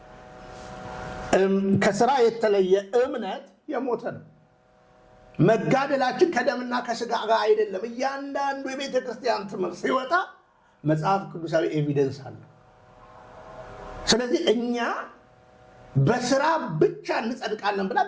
ከስራ የተለየ እምነት የሞተ ነው። መጋደላችን ከደምና ከስጋ ጋር አይደለም። እያንዳንዱ የቤተ ክርስቲያን ትምህርት ሲወጣ መጽሐፍ ቅዱሳዊ ኤቪደንስ አለ። ስለዚህ እኛ በስራ ብቻ እንጸድቃለን ብላ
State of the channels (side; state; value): both; identical; correlation 1.00